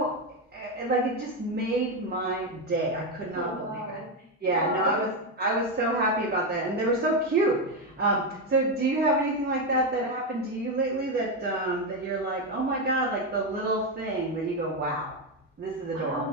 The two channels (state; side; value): normal; both; correlation 0.08